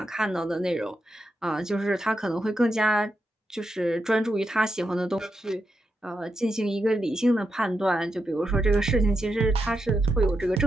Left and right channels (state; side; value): normal; both; correlation 0.85